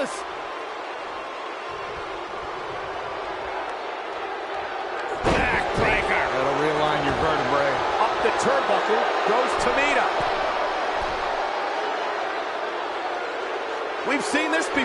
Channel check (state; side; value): identical; both; correlation 1.00